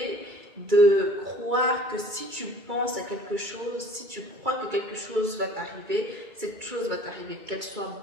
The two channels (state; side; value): late; left; 2.2 ms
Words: de croire que si tu penses à quelque chose, si tu crois que quelque chose va t'arriver, cette chose va t'arriver, qu'elle soit